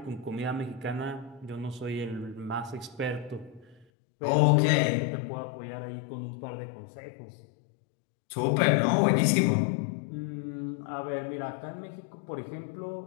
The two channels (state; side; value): drops out; right; at 3.9 s